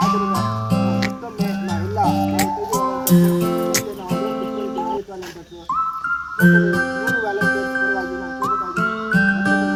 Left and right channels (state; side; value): identical; both; correlation 1.00